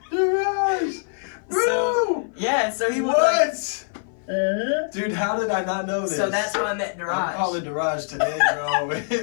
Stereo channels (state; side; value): silent; right; 56 dB below the other